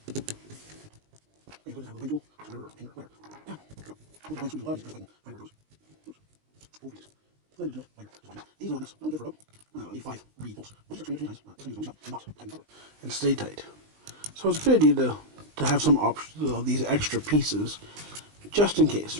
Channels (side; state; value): left; late; 19 ms